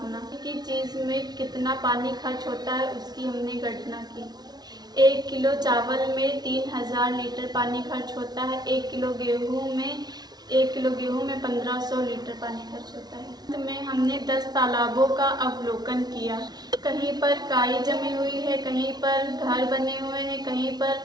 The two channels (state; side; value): late; left; 0.19 ms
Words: कि चीज़ में कितना पानी खर्च होता है उसकी हमने गणना की। 1 किलो चावल में 3000 लीटर पानी खर्च होता है। 1 किलो गेहूँ में 1500 लीटर पानी खर्च होता है। अंत में हमने 10 तालाबों का अवलोकन किया। कहीं पर काई जमी हुई है, कहीं पर घर बने हुए हैं, कहीं पर